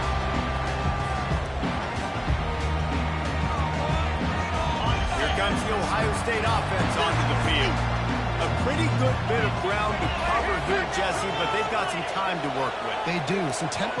Here comes the Ohio State offense onto the field. A pretty good bit of ground to cover here, Jesse, but they've got some time to work with. They do. So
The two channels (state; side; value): identical; both; correlation 1.00